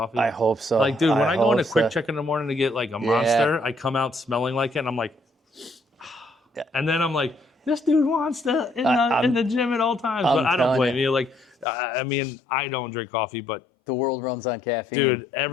I hope so. Like, dude, when I go in a hope quick so. check in the morning to get like a monster, I come out smelling like it, and I'm like, and then I'm like, this dude wants to in the gym at all times, but I don't blame you. Like, I mean, I don't drink coffee, but the world runs on caffeine. dude,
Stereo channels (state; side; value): drops out; right; at 11.7 s